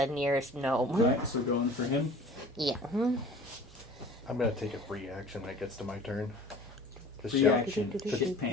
nearest gnome. Alright, so going for him. Yeah. I'm gonna take a free action when it gets to my turn. To Free shout, action. Shit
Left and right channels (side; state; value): both; normal; correlation 0.44